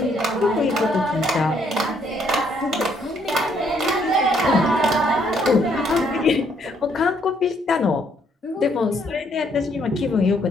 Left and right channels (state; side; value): normal; both; correlation 0.69